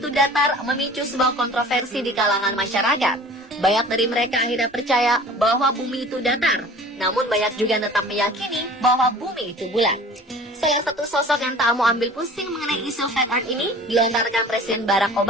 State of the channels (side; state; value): both; normal; correlation 0.45